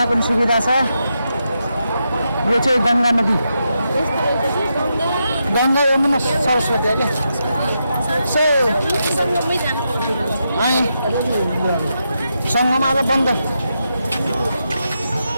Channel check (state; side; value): inverted; both; correlation -0.85